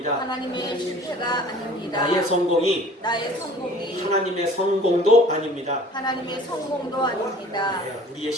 하나님의 실패가 아닙니다. 나의 성공이 하나님의 성공도 아닙니다. 하나님의 성공도 아닙니다. 우리의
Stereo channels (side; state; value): both; normal; correlation 0.47